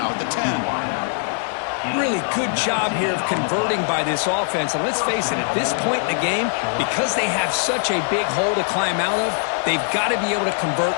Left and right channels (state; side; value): silent; right; 65 dB below the other